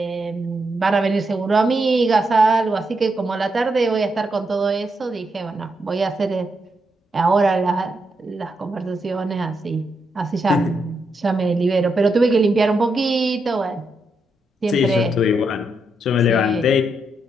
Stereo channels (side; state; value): both; normal; correlation 0.82